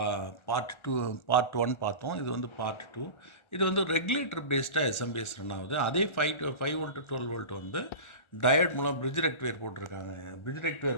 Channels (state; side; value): late; right; 1.4 ms